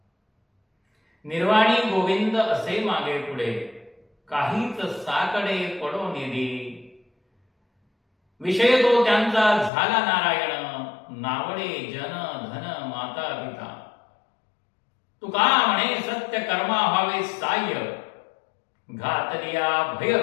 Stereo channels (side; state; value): right; drops out; at 9.7 s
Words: निर्वाणी गोविंद असे मागे पुढे, काहीच साकडे पडो निधी, विषय तो त्यांचा झाला नारायण, नावडे जन धन माता पिता. तुका म्हणे सत्य कर्मा व्हावे साह्य, घातलिया भय